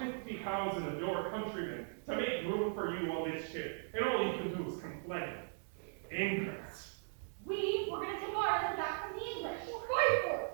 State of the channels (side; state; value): left; silent; digital silence